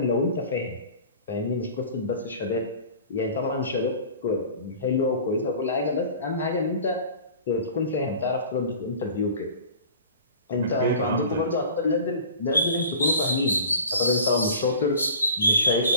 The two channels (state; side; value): inverted; both; correlation -0.42